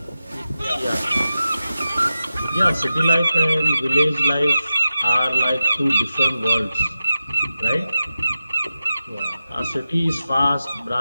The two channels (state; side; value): inverted; both; correlation -0.92